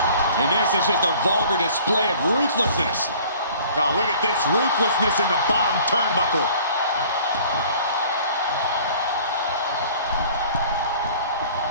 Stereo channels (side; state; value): both; inverted; correlation -0.50